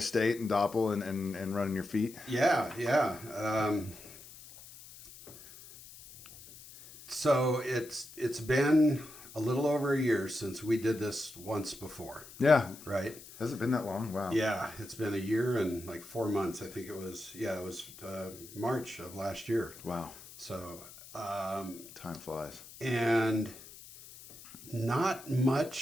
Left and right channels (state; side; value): noise; left; hiss, 17 dB below the sound